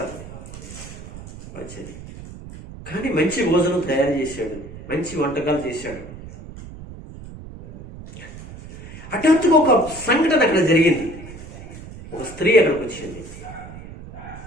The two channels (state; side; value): noise; right; rumble, 14 dB below the sound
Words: వచ్చేది కానీ మంచి భోజనం తయారు చేశాడు, మంచి వంటకాలు చేశాడు. హఠాత్తుగా ఒక సంఘటన అక్కడ జరిగింది. ఒక స్త్రీ అక్కడికి వచ్చింది.